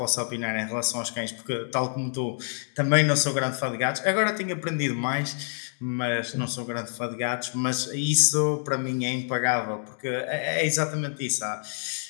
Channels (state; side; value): silent; right; digital silence